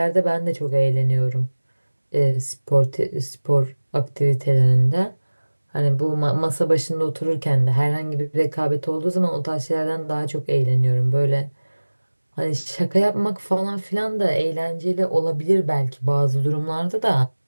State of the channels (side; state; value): both; inverted; correlation -1.00